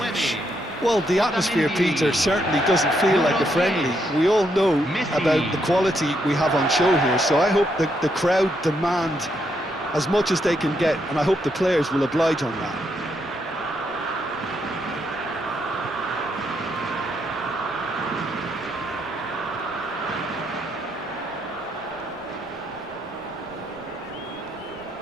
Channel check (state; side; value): noise; right; rumble, 28 dB below the sound